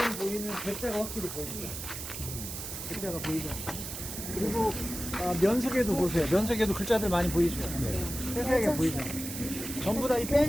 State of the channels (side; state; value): right; noise; hiss, 8 dB below the sound